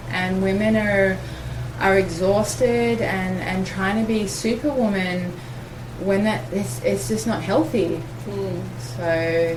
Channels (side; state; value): both; identical; correlation 1.00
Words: and women are exhausted and trying to be superwoman when it's just not healthy. So